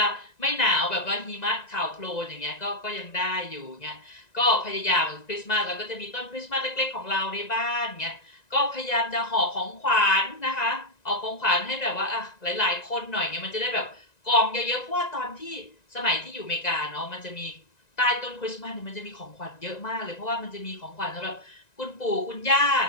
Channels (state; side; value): late; right; 1.9 ms